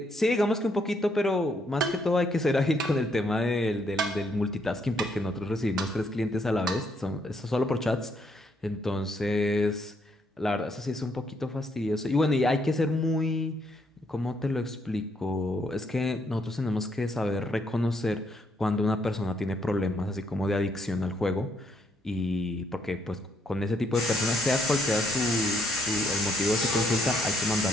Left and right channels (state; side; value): normal; both; correlation 0.72